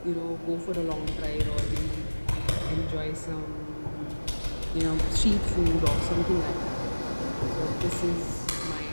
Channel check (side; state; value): both; inverted; correlation -1.00